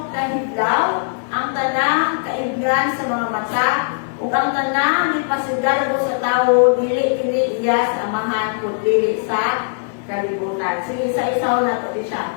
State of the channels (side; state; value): right; silent; digital silence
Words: kahidlaw, ang tanang kaibgan sa mga mata, ug ang tanang ipasigarbo sa tawo dili kini iya sa amahan kun dili sa kalibutan. Sige, isa-isaw na to siya.